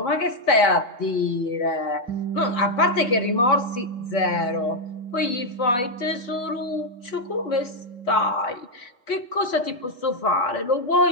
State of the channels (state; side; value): late; right; 4.2 ms